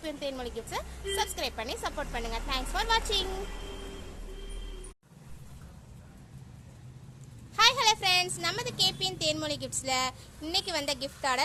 தேன்மொழி கிஃப்ட்ஸை சப்ஸ்கிரைப் பண்ணி சப்போர்ட் பண்ணுங்க. தேங்க்ஸ் ஃபார் வாட்சிங். ஹாய் ஹலோ ஃப்ரெண்ட்ஸ், நமது கேபிஎன் தேன்மொழி கிஃப்ட்ஸ்ல இன்னைக்கு வந்த gift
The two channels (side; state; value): both; identical; correlation 1.00